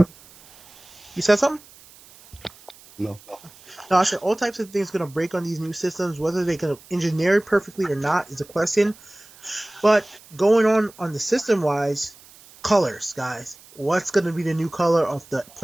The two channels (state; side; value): noise; right; hiss, 24 dB below the sound